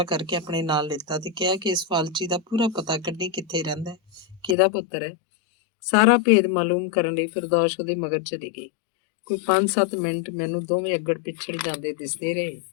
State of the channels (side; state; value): right; drops out; at 4.5 s